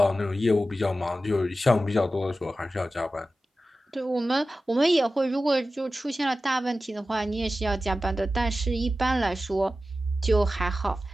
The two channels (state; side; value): normal; both; correlation 0.94